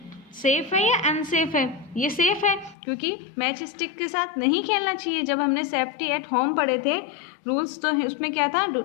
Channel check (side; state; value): right; drops out; at 2.8 s